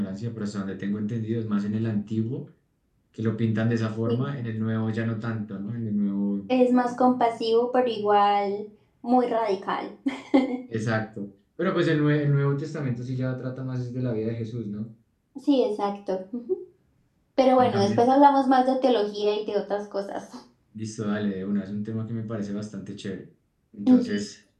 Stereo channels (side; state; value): both; identical; correlation 1.00